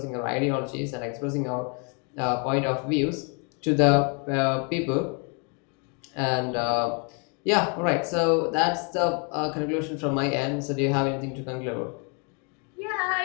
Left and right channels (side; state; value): right; quieter; 36.7 dB